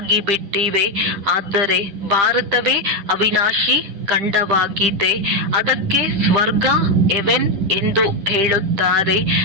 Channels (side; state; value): left; late; 10 ms